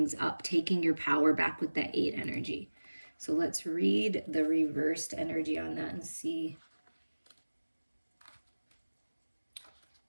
up, taking your power back with that 8 energy. So let's read the reversed energy on that and see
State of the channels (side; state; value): both; inverted; correlation -1.00